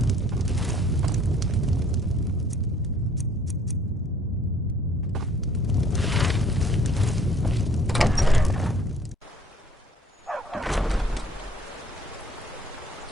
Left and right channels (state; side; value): normal; both; correlation 0.57